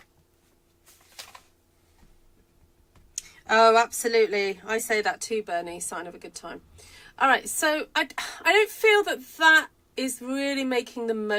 Oh, absolutely. I say that too, Bernie. Sign of a good time. All right, so I don't feel that is really making the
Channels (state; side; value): identical; both; correlation 1.00